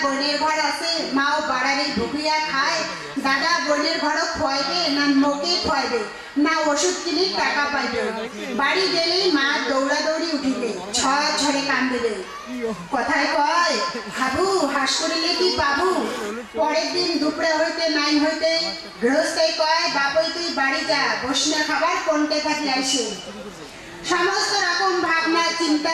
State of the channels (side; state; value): both; identical; correlation 1.00